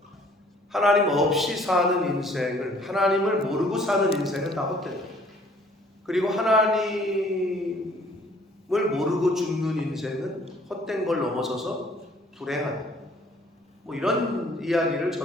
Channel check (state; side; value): normal; both; correlation 0.58